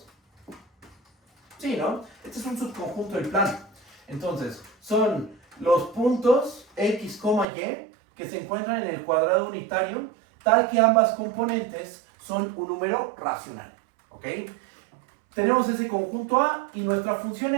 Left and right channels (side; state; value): left; drops out; at 7.5 s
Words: Sí, ¿no? Este es un subconjunto del plano. Entonces, son los puntos X, Y que se encuentran en el cuadrado unitario, tal que ambas componentes son un número racional. ¿Ok? Tenemos ese conjunto A y nuestra función